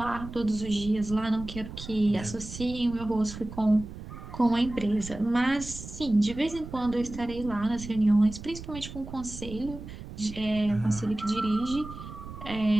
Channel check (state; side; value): noise; right; rumble, 12 dB below the sound